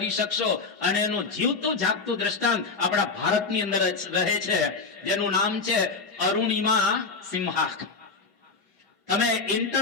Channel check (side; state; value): right; quieter; 4.4 dB